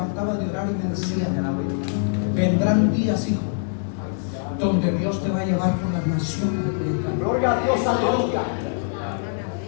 de orar y me decía: vendrán días, hijo, donde Dios te va a llevar por las naciones. Gloria a Dios, aleluya.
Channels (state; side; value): silent; right; 63 dB below the other